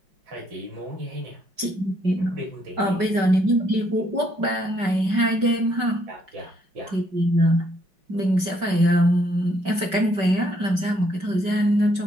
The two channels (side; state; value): left; late; 5.2 ms